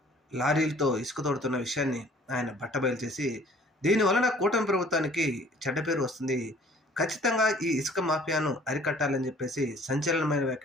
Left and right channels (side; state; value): both; normal; correlation 0.54